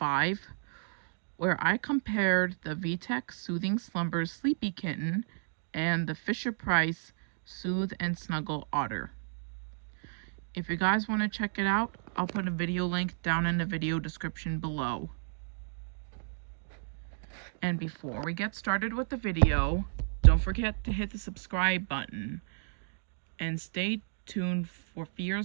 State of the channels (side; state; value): left; silent; digital silence